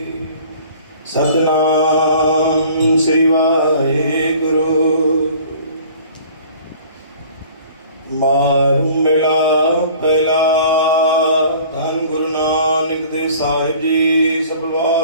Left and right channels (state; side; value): inverted; both; correlation -0.49